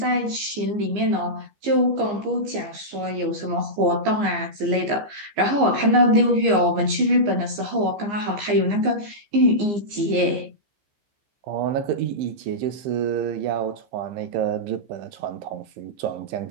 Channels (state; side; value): late; left; 15 ms